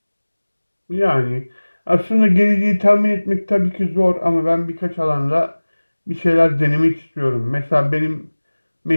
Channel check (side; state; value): both; inverted; correlation -1.00